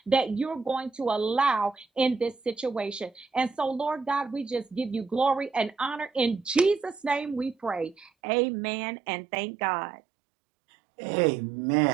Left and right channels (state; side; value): drops out; left; at 8.1 s